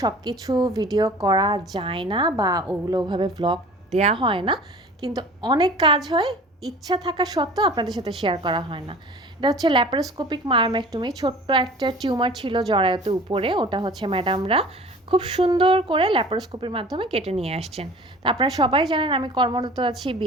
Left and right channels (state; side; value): normal; both; correlation 0.43